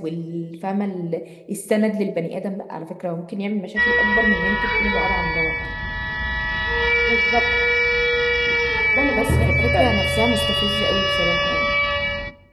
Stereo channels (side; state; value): both; identical; correlation 1.00